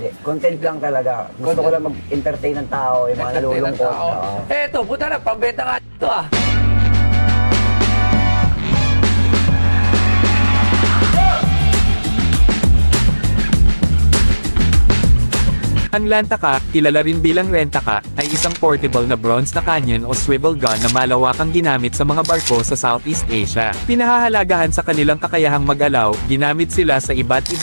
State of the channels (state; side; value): inverted; both; correlation -1.00